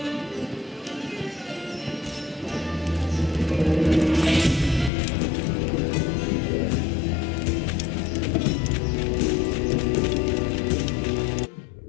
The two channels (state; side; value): drops out; right; at 4.9 s